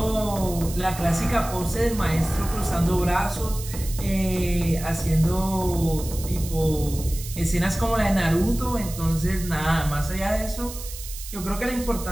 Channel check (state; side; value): noise; right; hiss, 12 dB below the sound